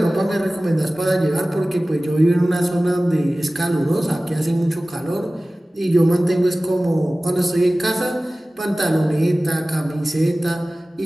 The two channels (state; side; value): normal; both; correlation 0.97